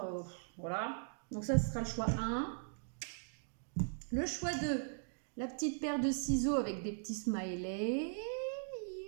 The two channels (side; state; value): left; silent; digital silence